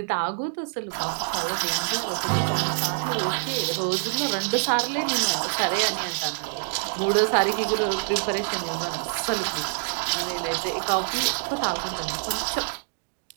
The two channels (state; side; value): silent; left; digital silence